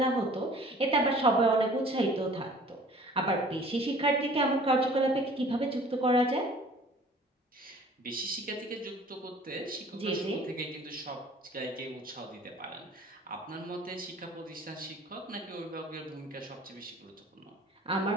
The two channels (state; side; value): normal; both; correlation 0.50